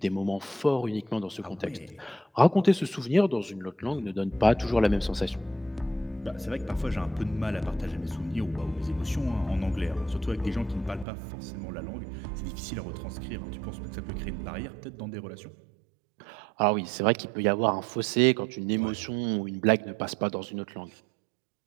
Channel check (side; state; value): left; drops out; at 11.1 s